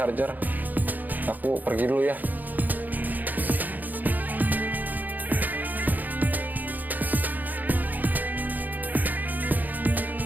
Aku pergi dulu ya.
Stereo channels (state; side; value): late; left; 0.084 ms